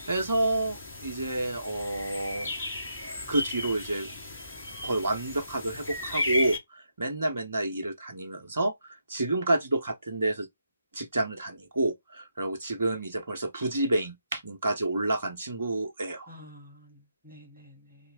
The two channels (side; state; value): both; inverted; correlation -0.81